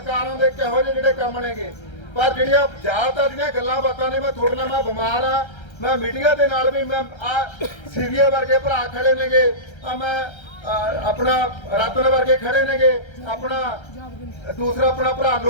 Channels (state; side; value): late; right; 1.3 ms